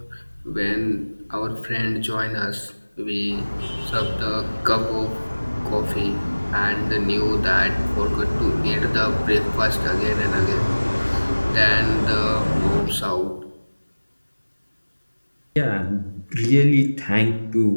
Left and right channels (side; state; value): both; inverted; correlation -1.00